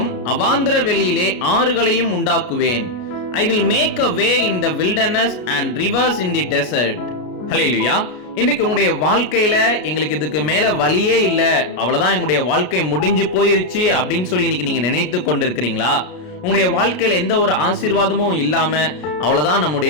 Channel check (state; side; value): late; right; 33 ms